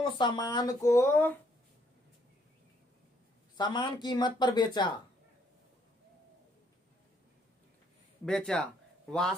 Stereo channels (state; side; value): normal; both; correlation 0.69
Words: सामान को समान कीमत पर बेचा।